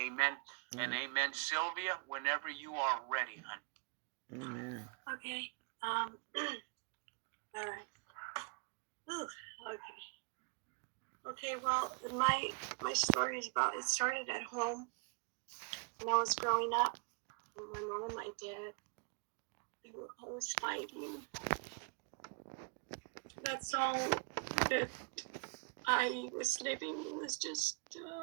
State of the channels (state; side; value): quieter; left; 35.3 dB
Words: and amen. Sylvia, whenever you are ready, honey. Amen. Okay. All right. Ooh, okay. Okay, well, my story is about, it started at home when I was growing up. And my mom and my dad, they were always fighting. That's all that I was living, was just